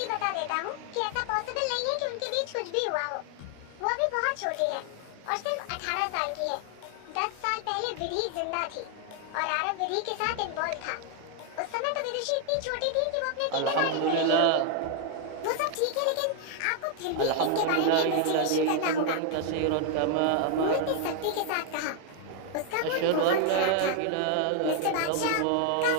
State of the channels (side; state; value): both; different; correlation 0.00